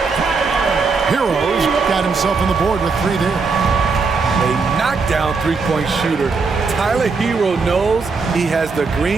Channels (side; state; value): left; quieter; 4.6 dB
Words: Hero's got himself on the board with 3 there. A knockdown three-point shooter. Tyler Hero knows he has the